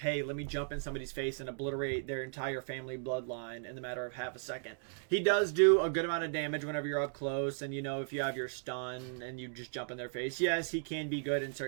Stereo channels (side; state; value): left; silent; digital silence